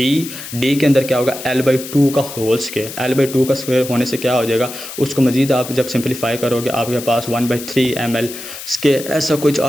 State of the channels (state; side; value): noise; left; hiss, 11 dB below the sound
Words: के अंदर क्या होगा, L/2 का होल स्क्वायर। L/2 का स्क्वायर होने से क्या हो जाएगा, उसको मजीद आप जब सिंप्लीफाई करोगे आपके पास 1/3 ml², ऐसा कुछ